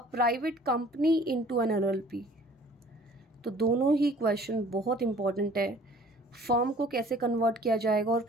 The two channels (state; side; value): normal; both; correlation 0.52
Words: private company into an LLP। तो दोनों ही क्वेश्चन बहुत इंपॉर्टेंट है, फर्म को कैसे कन्वर्ट किया जाएगा और